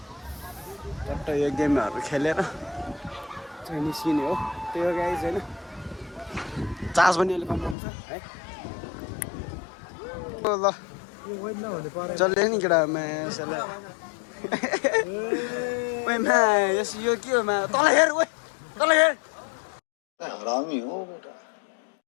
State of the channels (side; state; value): right; drops out; at 7.8 s